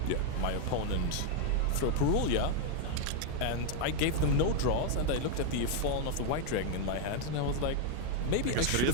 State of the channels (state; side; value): different; both; correlation 0.00